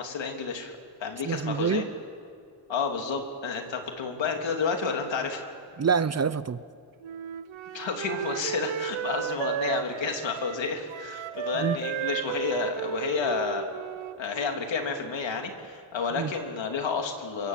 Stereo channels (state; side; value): normal; both; correlation -0.11